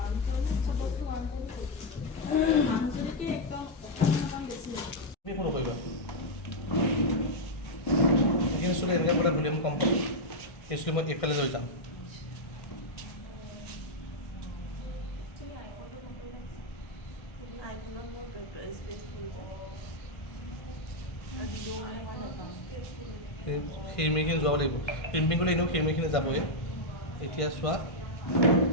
তুমি একো নকৰিবা এইখিনি চুলি এনেকৈ বোলে ভলিউম কম পাব এই চুলি মই এইফালে লৈ যাম খিৰিমিখিনি যোৱাব লাগিব ক্ৰিম্পিং কৰিলে এনেও খিৰিমিখিনি যাবই এতিয়া চোৱা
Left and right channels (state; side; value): late; right; 1.5 ms